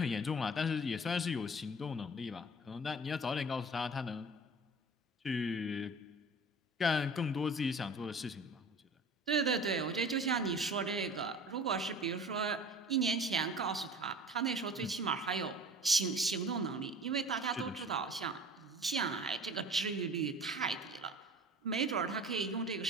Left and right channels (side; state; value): both; normal; correlation 0.42